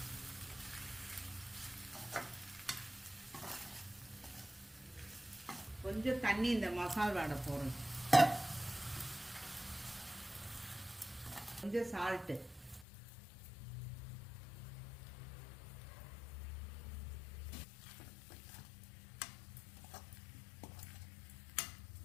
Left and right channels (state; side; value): drops out; right; at 12.9 s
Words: கொஞ்சம் தண்ணி இந்த மசால் வாடை போடணும். கொஞ்சம் சால்ட்டு,